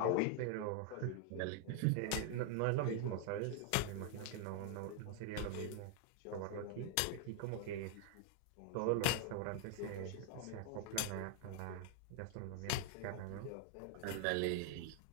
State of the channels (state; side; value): different; both; correlation 0.00